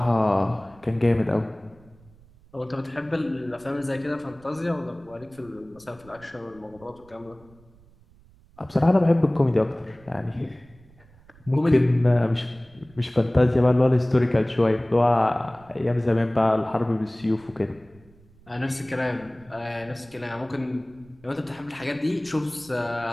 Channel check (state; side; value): noise; right; rumble, 27 dB below the sound